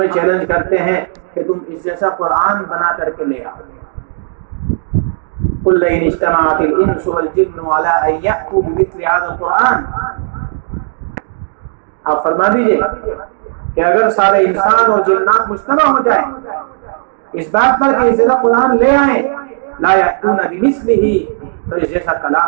چیلنج کرتے ہیں کہ تم اس جیسا قرآن بنا کر کے لے آؤ۔ قُلْ لَئِنِ اجْتَمَعَتِ الْإِنسُ وَالْجِنُّ عَلَىٰ أَن يَأْتُوا بِمِثْلِ هَٰذَا الْقُرْآنِ، آپ فرما دیجئے کہ اگر سارے انسان اور جنات مجتمع ہو جائیں اس بات پر کہ اس جیسا قرآن لے آئیں، لَا يَأْتُونَ بِمِثْلِهِ، تو اس جیسا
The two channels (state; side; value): silent; left; digital silence